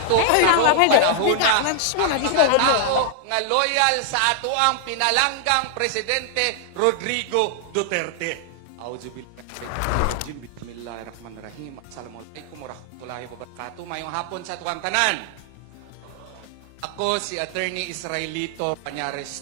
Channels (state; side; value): different; both; correlation -0.01